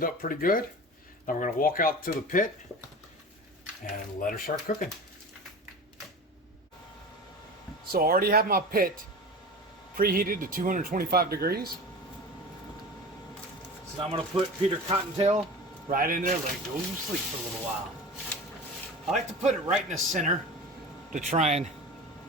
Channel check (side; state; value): both; normal; correlation 0.33